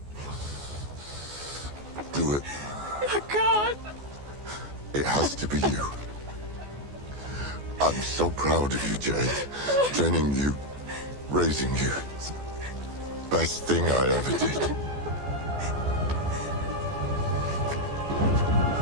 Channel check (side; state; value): left; late; 14 ms